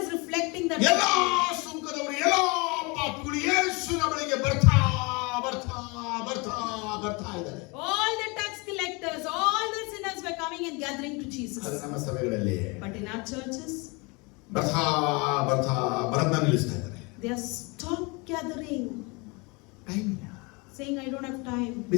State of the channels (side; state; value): right; quieter; 28.3 dB